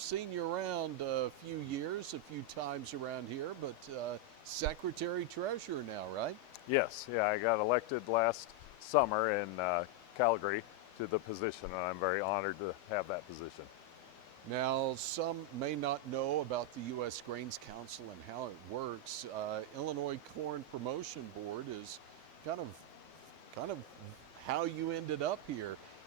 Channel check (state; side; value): normal; both; correlation 0.01